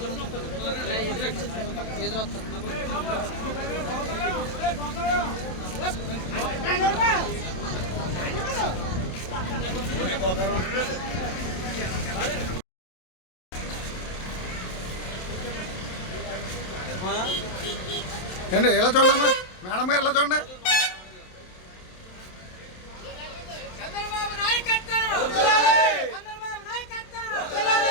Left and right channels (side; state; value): right; late; 27 ms